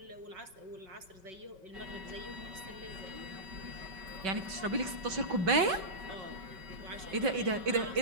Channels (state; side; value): late; left; 5.3 ms